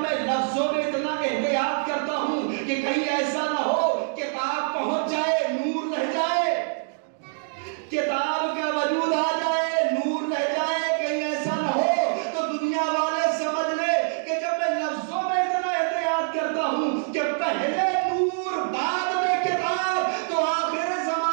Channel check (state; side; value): silent; left; digital silence